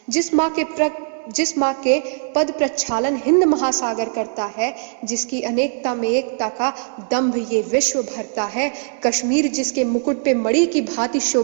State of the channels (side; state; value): left; silent; digital silence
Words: जिस माँ के पद प्रक्षालन हिंद महासागर करता है, जिसकी अनेकता में एकता का दंभ ये विश्व भरता है, कश्मीर जिसके मुकुट पे मणि की भांति